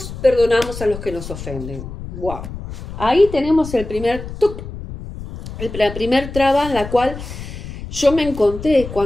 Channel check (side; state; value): left; noise; rumble, 10 dB below the sound